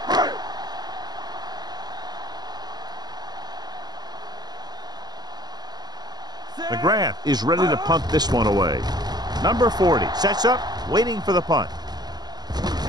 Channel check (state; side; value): late; left; 0.20 ms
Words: McGrath is ready to punt this one away. Number 40 sets up, waiting for the punt.